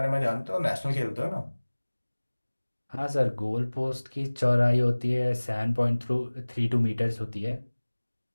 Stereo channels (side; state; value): both; inverted; correlation -1.00